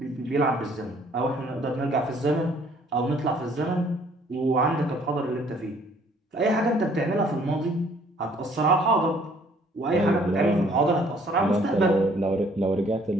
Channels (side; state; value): both; normal; correlation 0.60